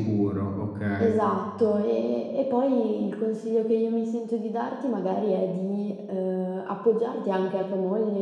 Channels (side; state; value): both; identical; correlation 1.00